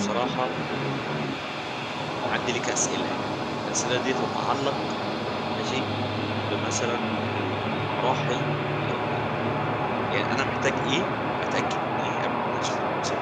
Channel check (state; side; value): identical; both; correlation 1.00